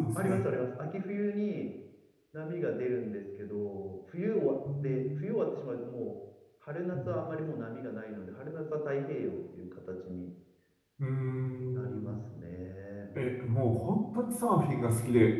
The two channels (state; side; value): identical; both; correlation 1.00